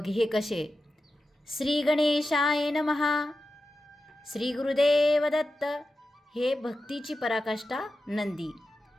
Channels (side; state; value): both; normal; correlation 0.92